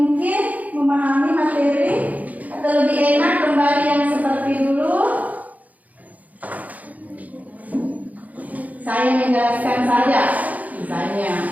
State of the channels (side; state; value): left; late; 0.076 ms